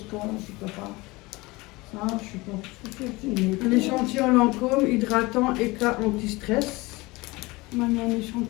peux pas. Ça, je suis pas. L'échantillon Lancôme, hydratant, éclat, anti-stress. Maintenant, un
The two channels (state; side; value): quieter; right; 22.5 dB